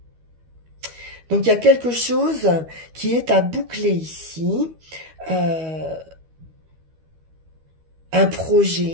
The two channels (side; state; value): left; late; 12 ms